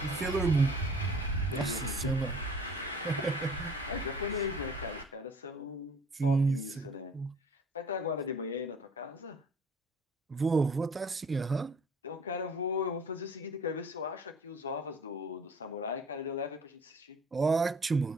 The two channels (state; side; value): normal; both; correlation 0.50